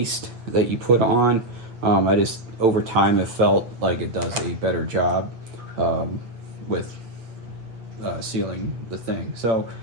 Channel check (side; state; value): left; late; 8.5 ms